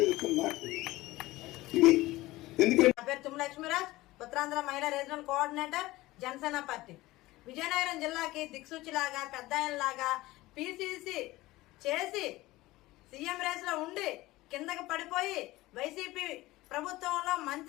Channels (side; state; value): right; quieter; 18.6 dB